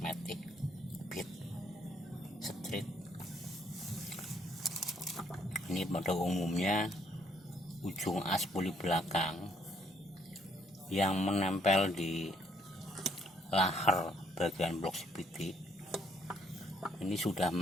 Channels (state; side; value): normal; both; correlation 0.68